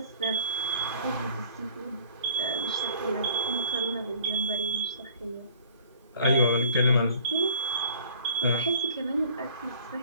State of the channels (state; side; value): inverted; both; correlation -0.51